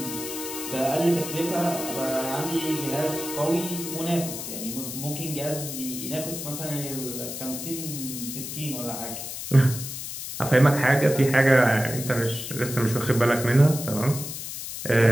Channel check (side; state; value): left; noise; hiss, 7 dB below the sound